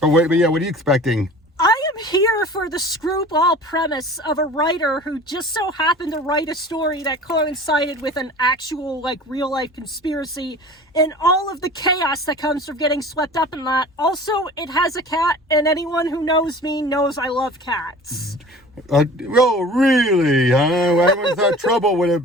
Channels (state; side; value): normal; both; correlation 0.42